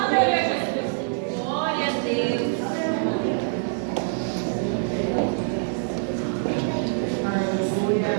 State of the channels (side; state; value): left; silent; digital silence